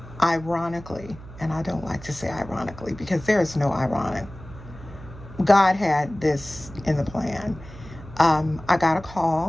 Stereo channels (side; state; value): right; noise; hum, 16 dB below the sound